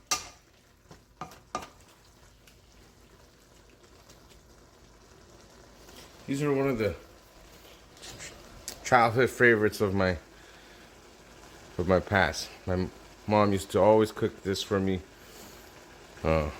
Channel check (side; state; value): both; identical; correlation 1.00